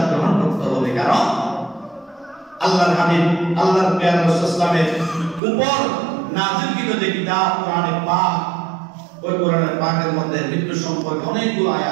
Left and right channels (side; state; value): left; drops out; at 5.4 s